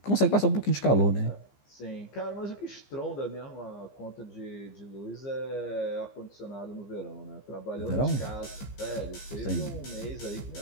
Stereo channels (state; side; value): late; right; 15 ms